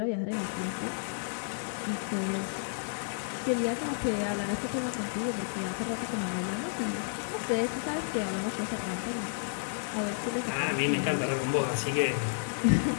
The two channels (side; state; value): right; silent; digital silence